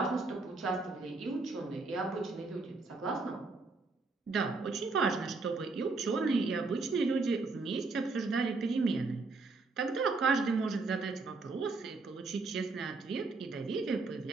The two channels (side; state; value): left; quieter; 3.8 dB